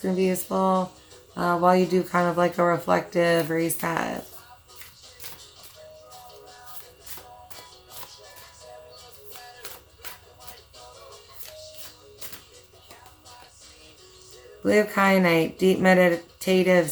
to be useful, while you do kind of like a reflective reset. Blue kyanite, deep meditative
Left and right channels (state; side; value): identical; both; correlation 1.00